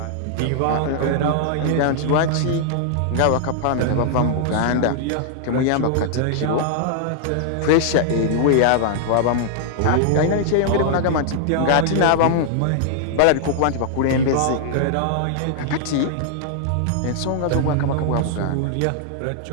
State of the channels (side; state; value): both; different; correlation -0.01